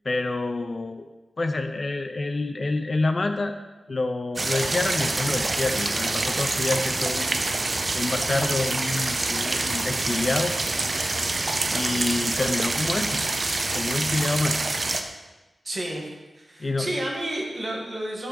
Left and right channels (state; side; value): normal; both; correlation 0.94